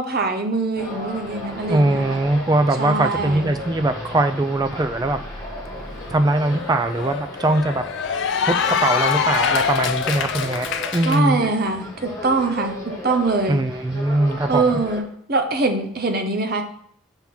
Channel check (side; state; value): both; normal; correlation 0.45